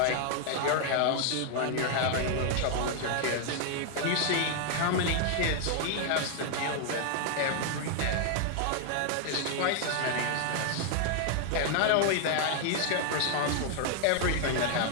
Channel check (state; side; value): different; both; correlation 0.00